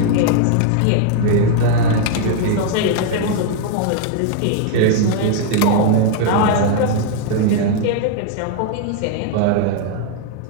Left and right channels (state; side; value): different; both; correlation 0.00